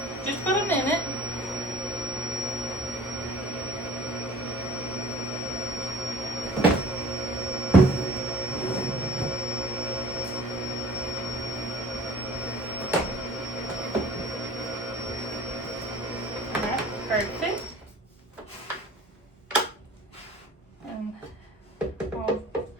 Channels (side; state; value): both; normal; correlation 0.45